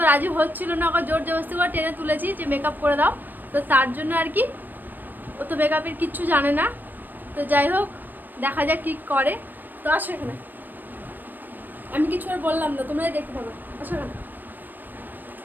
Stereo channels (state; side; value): late; left; 0.090 ms